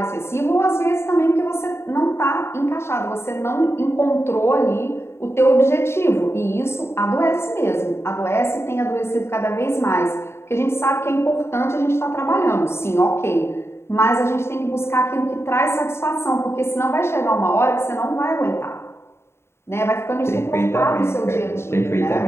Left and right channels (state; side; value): late; right; 0.12 ms